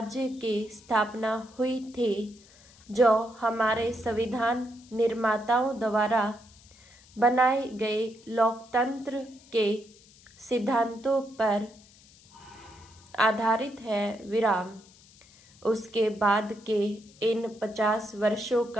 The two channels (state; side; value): noise; left; hiss, 26 dB below the sound